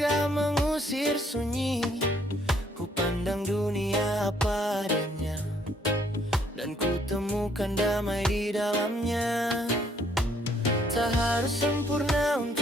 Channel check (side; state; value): both; normal; correlation 0.66